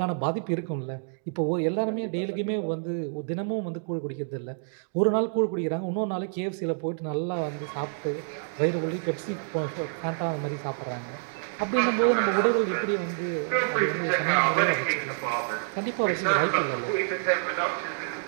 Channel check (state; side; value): silent; left; digital silence